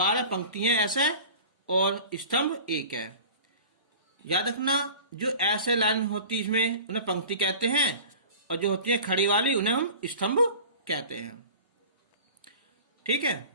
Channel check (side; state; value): both; inverted; correlation -0.39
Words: पंक्ति हैं ऐसे और स्तंभ 1 है। याद रखना, जो ऐसे लाइन होती है इसमें उन्हें पंक्ति कहते हैं, और जो होती है खड़ी वाली उन्हें हम स्तंभ कहते हैं। ठीक है,